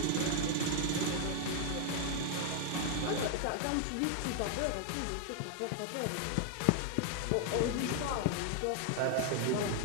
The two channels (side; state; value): both; different; correlation 0.00